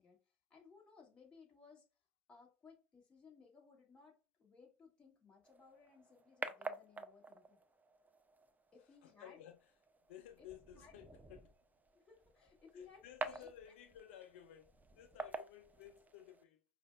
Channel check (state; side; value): normal; both; correlation 0.57